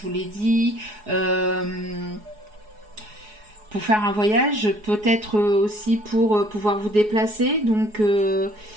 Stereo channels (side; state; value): left; late; 4.7 ms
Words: vous l'ai dit, pour faire un voyage, peut-être aussi pour pouvoir vous déplacer. Donc,